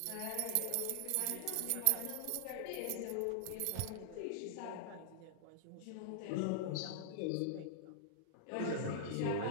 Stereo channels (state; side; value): different; both; correlation -0.01